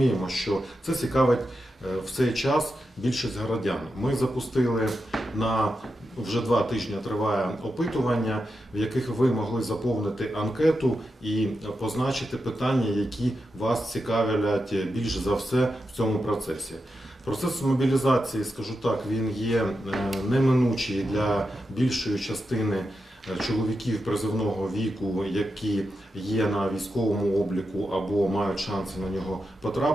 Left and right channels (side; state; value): both; normal; correlation 0.88